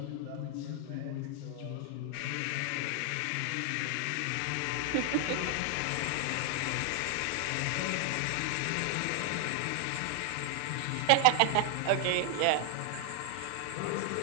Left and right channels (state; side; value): different; both; correlation 0.00